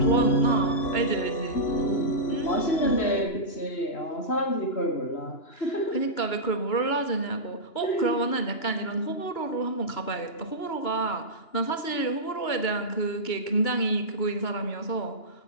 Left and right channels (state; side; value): late; right; 2.9 ms